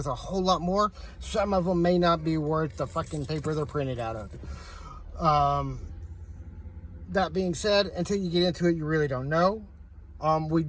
a whole lot more. Some of them may not be worth the fucking paper they're printed out of. That being said, until you get into it, you really don't know. We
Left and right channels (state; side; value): identical; both; correlation 1.00